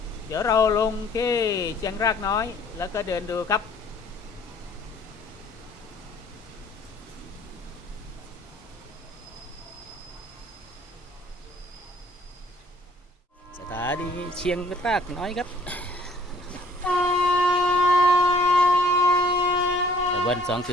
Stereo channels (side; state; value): both; normal; correlation 0.58